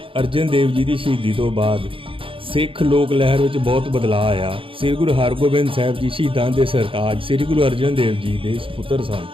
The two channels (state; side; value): late; left; 0.26 ms